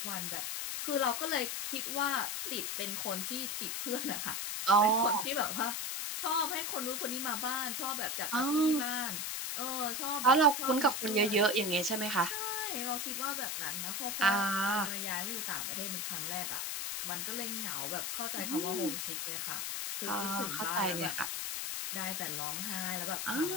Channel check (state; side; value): noise; left; hiss, 2 dB below the sound